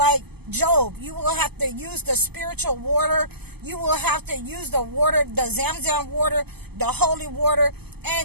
Job. You will have to use the spiritual water. You will have to use the water, the Zamzam water, the holy water.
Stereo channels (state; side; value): late; left; 0.97 ms